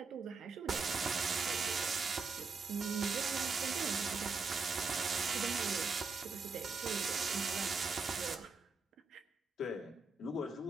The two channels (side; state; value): left; quieter; 4.3 dB